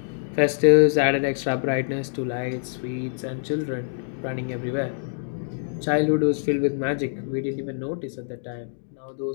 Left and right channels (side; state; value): right; silent; digital silence